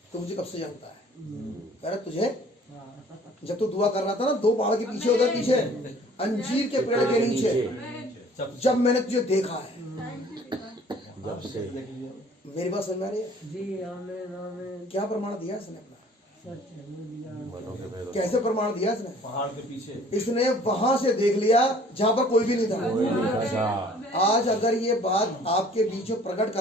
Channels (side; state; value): both; normal; correlation 0.53